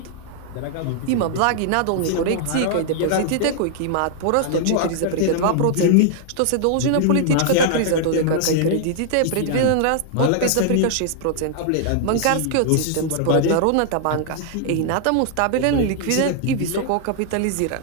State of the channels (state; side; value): different; both; correlation -0.01